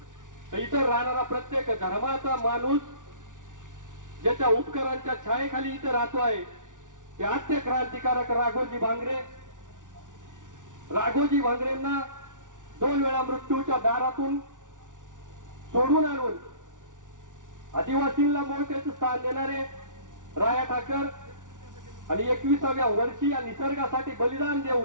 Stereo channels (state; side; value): late; left; 0.87 ms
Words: तर इथं राहणारा प्रत्येक धर्माचा माणूस ज्याच्या उपकारांच्या छायेखाली इथं राहतो आहे ते आद्य क्रांतिकारक राघोजी भांगरे. राघोजी भांगरेंना 2 वेळा मृत्यूच्या दारातून सोडून आणून आदिवासींना मोठ्याचं स्थान देणारे राया ठाकर आणि 21व्या वर्षी या निसर्गासाठी बलिदान